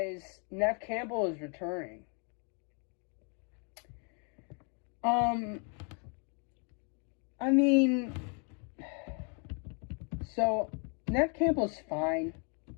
Neve Campbell is returning. I mean, so Neve Campbell's fine.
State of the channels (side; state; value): right; quieter; 38.2 dB